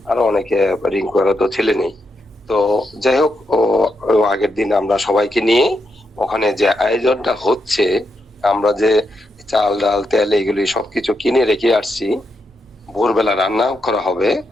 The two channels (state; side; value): normal; both; correlation 0.83